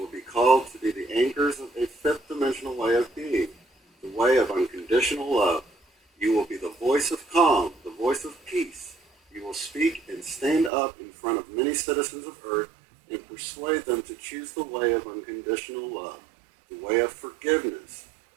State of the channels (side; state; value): left; drops out; at 10.7 s